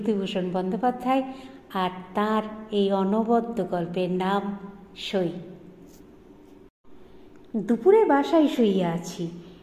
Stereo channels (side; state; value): both; identical; correlation 1.00